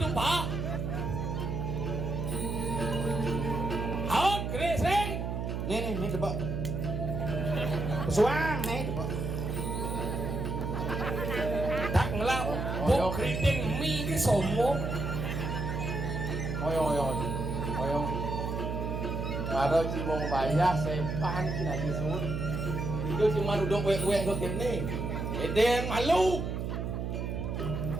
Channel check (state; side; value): noise; right; hum, 2 dB below the sound